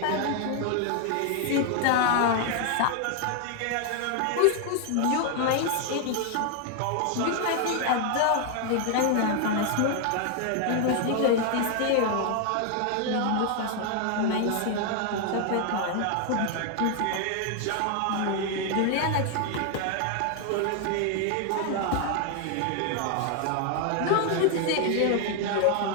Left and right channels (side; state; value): both; different; correlation 0.00